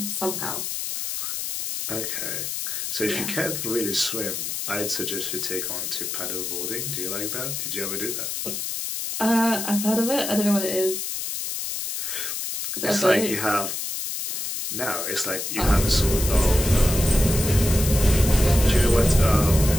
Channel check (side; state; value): left; noise; hiss, 4 dB below the sound